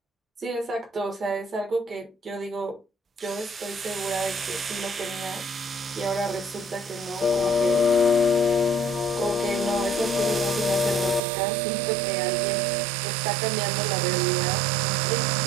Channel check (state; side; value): drops out; left; at 11.2 s